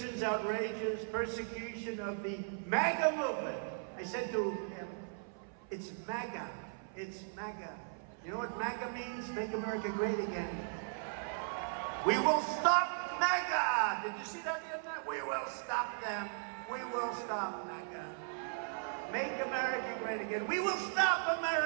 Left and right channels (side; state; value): left; silent; 53 dB below the other